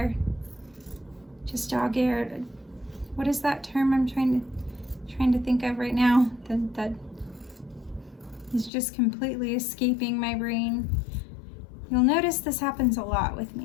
Just dog ear. What is that term I'm trying to think of right now? That is just completely escaping my brain. You'll notice this happens a lot with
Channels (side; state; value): right; drops out; at 8.7 s